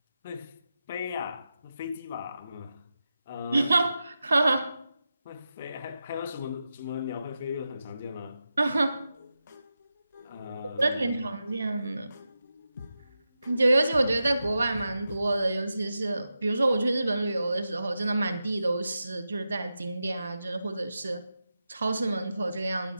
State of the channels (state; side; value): inverted; both; correlation -0.90